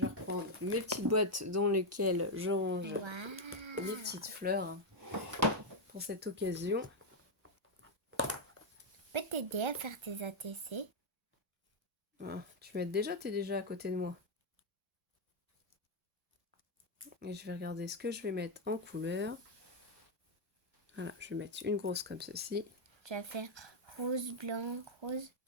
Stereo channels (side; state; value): both; normal; correlation 0.01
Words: reprendre mes petites boîtes dans lesquelles je range les petites fleurs pour cette occasion. Je peux t'aider à faire tes ATC? Ah, tu m'aides déjà, t'es déjà à côté de moi. Et je vais regarder ce que je vais mettre en couleur. Voilà, je vais mettre une grosse comme ceci. Tu vas faire rose, blanc, rose.